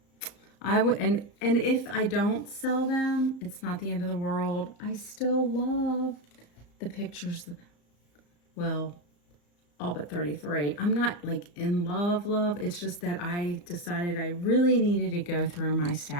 I would, and if I don't sell them, it's not the end of the world. I still love the pictures. Well, all but 33. I'm not like in love. It's just that I decided I really needed to go through my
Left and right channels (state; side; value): late; right; 34 ms